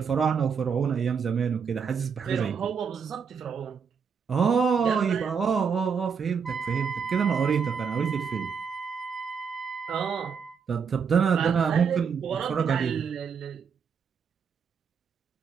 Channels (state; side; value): quieter; left; 6.3 dB